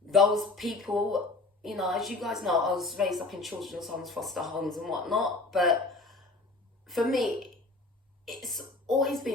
those people you know, as you guys know, I was raised up in children's homes, foster homes and whatnot. But for me, it's always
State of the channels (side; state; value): right; quieter; 3.3 dB